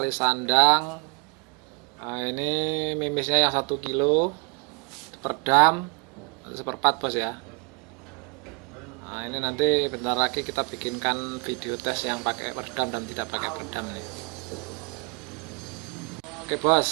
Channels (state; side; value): quieter; left; 33.2 dB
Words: sandang. Nah, ini mimisnya yang 1 kilo, perdam, seperempat bos ya. Nah, ini nanti bentar lagi kita bikinkan video tes yang pakai perdam dan tidak pakai perdam nih. Oke